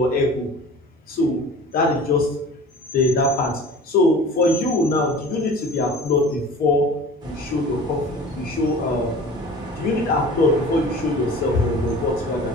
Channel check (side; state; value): both; normal; correlation 0.42